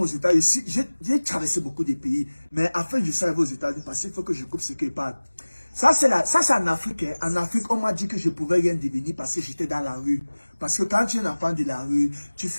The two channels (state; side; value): inverted; both; correlation -1.00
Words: États-Unis. J'ai traversé beaucoup de pays, mais afin de je arriver aux États-Unis, parce qu'il faut que je coupe ce qu'il parle. Ça, c'est en Afrique. Hein. En Afrique, on m'a dit que je pouvais rien devenir parce que j'étais dans la rue. Parce que quand tu es un enfant de la rue, tu